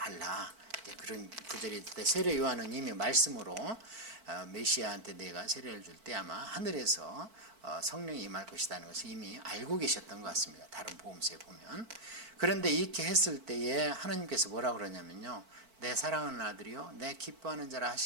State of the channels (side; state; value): left; late; 4.5 ms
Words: 그런 구절이 있을 때 세례 요한은 이미 말씀으로 메시아한테 내가 세례를 줄 때 아마 하늘에서 성령이 임할 것이라는 것을 이미 알고 계셨던 것 같습니다. 다른 복음서에 보면. 그런데 이렇게 했을 때에 하나님께서 뭐라 그러냐면요, 내 사랑하는 아들이요 내 기뻐하는 자라